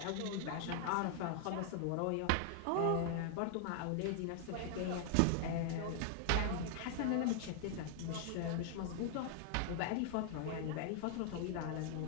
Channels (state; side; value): different; both; correlation 0.00